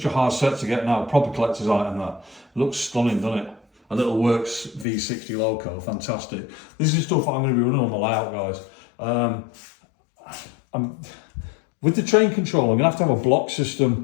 a hard set to get now. Proper collector's item. That looks stunning, doesn't it? A little works V60 loco, fantastic. This is stuff I'm going to be running on the layout, guys. With the train control, I'm going to have a block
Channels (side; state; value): right; drops out; at 4.9 s